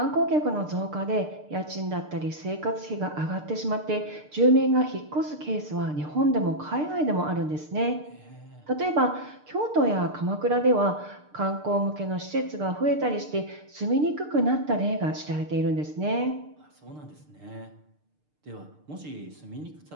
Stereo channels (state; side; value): late; left; 6.7 ms